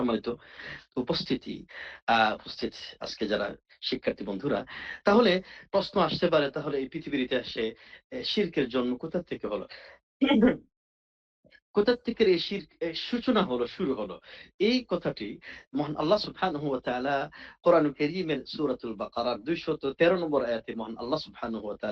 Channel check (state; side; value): identical; both; correlation 1.00